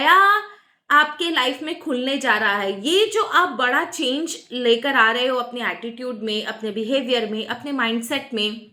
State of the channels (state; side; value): identical; both; correlation 1.00